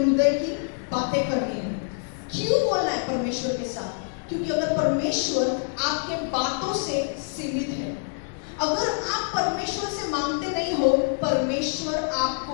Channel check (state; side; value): silent; right; digital silence